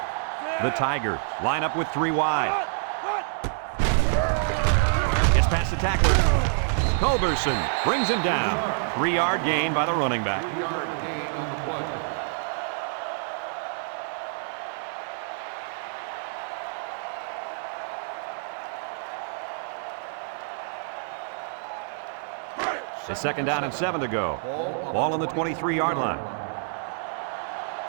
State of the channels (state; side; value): silent; left; 60 dB below the other